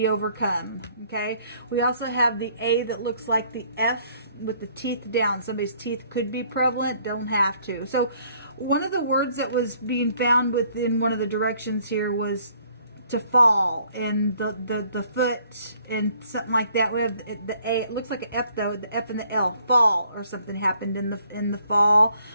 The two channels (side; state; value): both; inverted; correlation -0.63